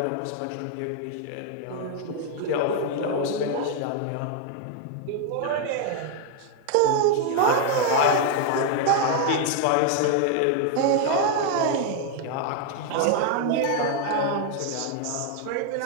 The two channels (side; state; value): both; different; correlation 0.00